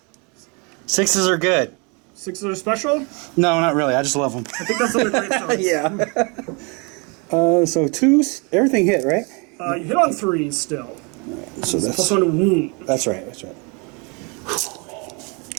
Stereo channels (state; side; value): quieter; left; 31.7 dB